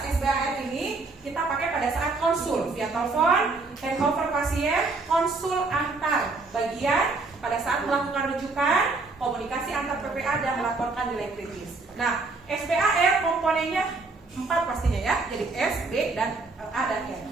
SBAR ini kita pakai pada saat konsul via telepon, handover pasien, konsul antar bagian pada saat melakukan rujukan, komunikasi antar PPA dan melaporkan nilai kritis. Nah SBAR komponennya 4 pastinya ya, jadi S, B, dan A dan E.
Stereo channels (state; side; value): quieter; left; 3.7 dB